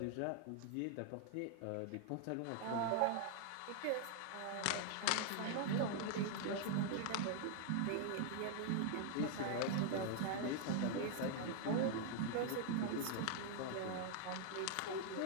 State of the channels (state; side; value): different; both; correlation 0.00